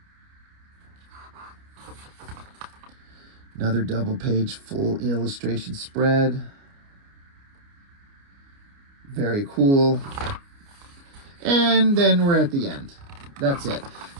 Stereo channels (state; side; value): late; left; 29 ms